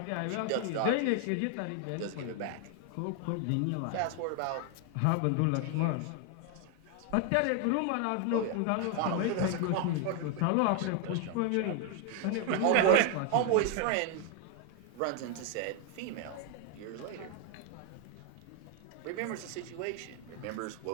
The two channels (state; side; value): different; both; correlation 0.01